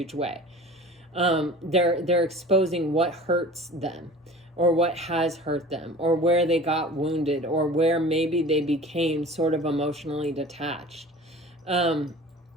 way. They're exposing what hurts them, or what has hurt them, or where they got wounded, or where maybe they became sort of emotionally detached.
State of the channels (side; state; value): both; normal; correlation 0.41